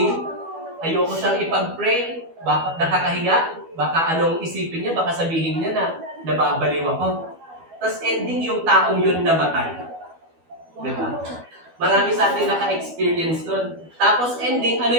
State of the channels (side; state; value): left; late; 12 ms